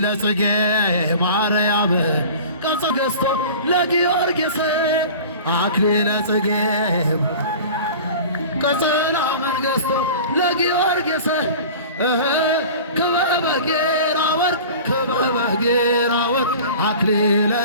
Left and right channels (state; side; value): inverted; both; correlation -0.39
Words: ጽጌ ማርያም ቀጸ ገዝቶ ለጊዮርጊስ አክሊለ ጽጌ ቀጸላ መንገሥቶ ለጊዮርጊስ ክበበ ጌራ ወርቅ ክበበ ጌራ ወርቅ አክሊለ